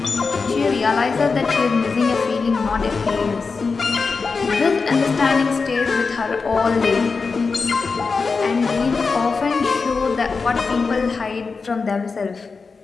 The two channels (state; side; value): quieter; right; 4.6 dB